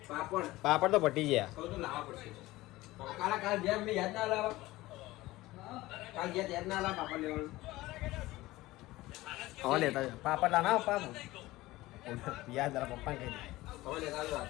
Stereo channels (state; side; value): quieter; right; 18.4 dB